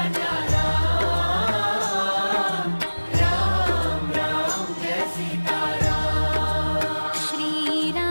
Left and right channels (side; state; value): both; inverted; correlation -1.00